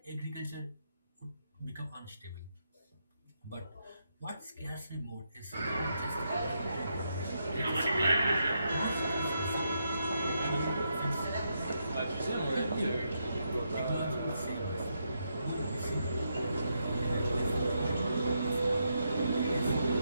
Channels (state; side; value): inverted; both; correlation -0.81